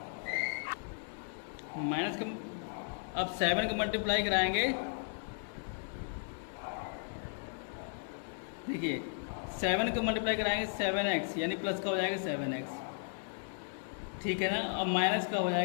माइनस का, अब 7 का मल्टीप्लाई कराएंगे, देखिए 7 का मल्टीप्लाई कराएंगे 7x, यानी प्लस का हो जाएगा 7x, ठीक है ना। अब माइनस का हो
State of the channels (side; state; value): right; silent; digital silence